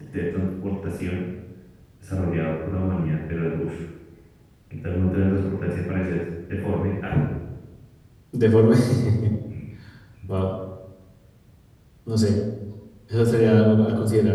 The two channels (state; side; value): identical; both; correlation 1.00